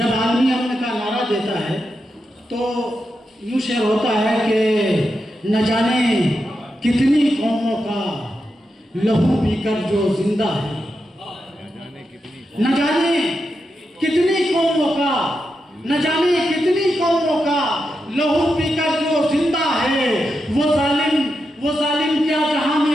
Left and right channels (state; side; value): normal; both; correlation 0.87